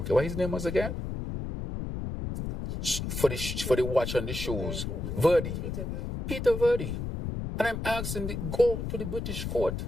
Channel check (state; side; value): noise; left; rumble, 4 dB below the sound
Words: What his name was again? For the watch on the shoes. Verdi. Peter Verdi. And I'm asking, go to the British court.